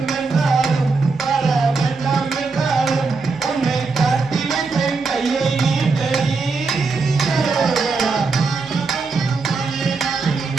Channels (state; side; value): quieter; left; 4.3 dB